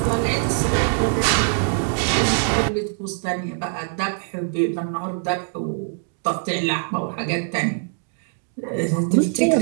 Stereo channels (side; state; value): left; silent; 60 dB below the other